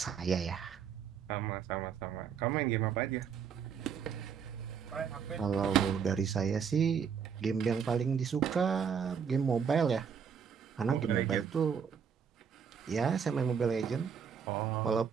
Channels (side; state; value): left; quieter; 7.0 dB